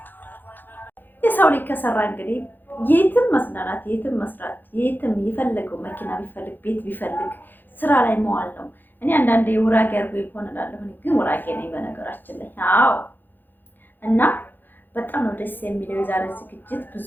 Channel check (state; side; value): late; right; 0.091 ms